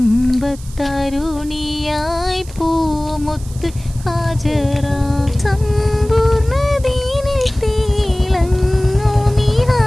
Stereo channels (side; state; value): right; noise; hiss, 20 dB below the sound